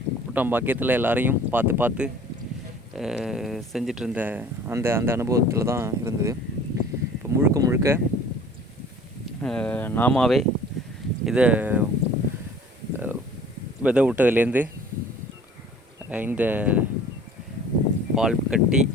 கூட்டம் பாக்கியத்தில் எல்லாரையும் பார்த்து செஞ்சிட்ருந்த அந்த அனுபவத்தில் தான் இருந்தது. முழுக்க நாமாவே இதை விதை விட்டதுலேருந்து இந்த பால் கட்டி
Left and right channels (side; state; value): both; normal; correlation 0.48